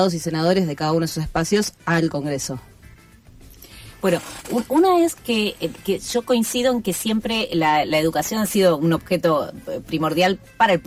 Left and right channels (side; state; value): both; identical; correlation 1.00